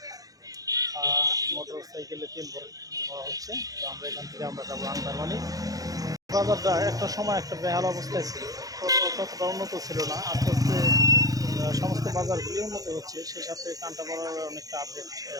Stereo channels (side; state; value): left; late; 0.17 ms